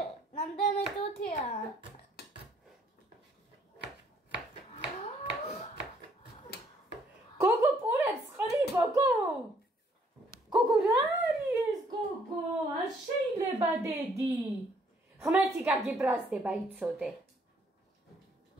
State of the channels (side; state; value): both; normal; correlation 0.66